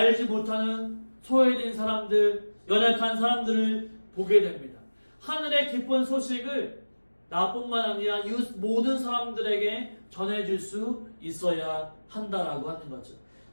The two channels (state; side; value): inverted; both; correlation -1.00